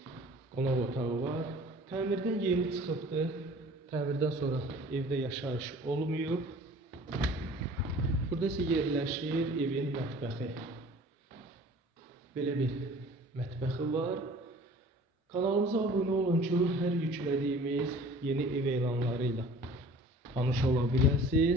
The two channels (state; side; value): normal; both; correlation 0.47